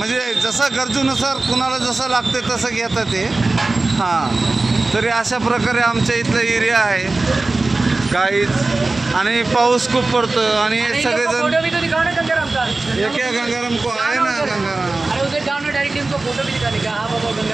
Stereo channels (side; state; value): left; quieter; 3.3 dB